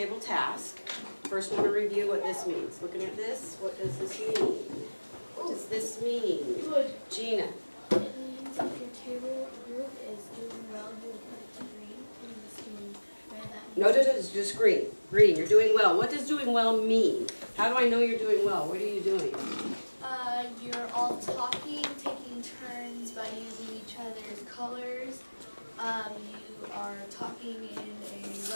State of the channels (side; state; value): both; inverted; correlation -1.00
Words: task. First want to review what this means. Looking at this, what does this mean? What does this mean? Gina. It means if your table group is doing well, you'll put it to green. And this means red. No, it's just green. Green, you're doing well. What does doing well mean? How do I know you're doing well? What are you doing? You're all talking, taking turns by using each other's colors. You are talking in a